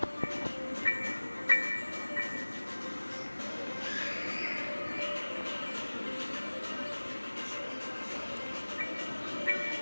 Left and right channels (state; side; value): inverted; both; correlation -1.00